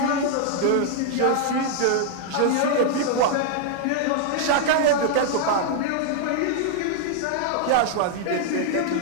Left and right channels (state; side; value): different; both; correlation 0.00